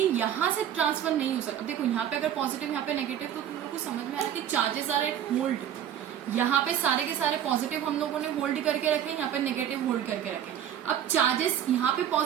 यहां से ट्रांसफर नहीं हो सकता। देखो यहाँ पे अगर पॉजिटिव, यहाँ पे नेगेटिव, तो तुम लोग को समझ में आ रहा है कि चार्जेस आर एट होल्ड। यहाँ पे सारे के सारे पॉजिटिव हम लोगों ने होल्ड करके रखे, यहाँ पे नेगेटिव होल्ड करके रखे। अब चार्जेस यहाँ पे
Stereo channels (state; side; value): quieter; left; 10.1 dB